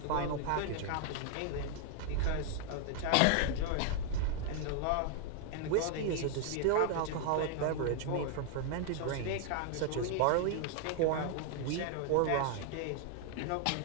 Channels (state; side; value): different; both; correlation 0.00